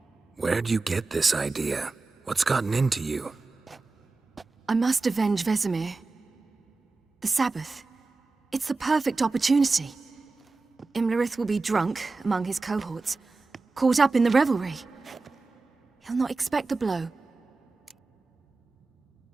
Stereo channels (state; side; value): quieter; left; 3.8 dB